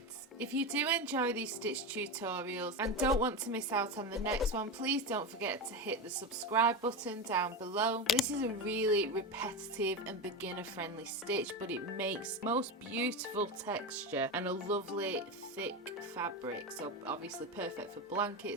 If you do enjoy these stitch tutorials and don't want to miss out on the next one, please don't forget to hit the subscribe button down below. This is a really repetitive and beginner friendly stitch, but it makes most beautiful texture and a lovely thick fabric, so obviously perfect for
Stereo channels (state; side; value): normal; both; correlation 0.19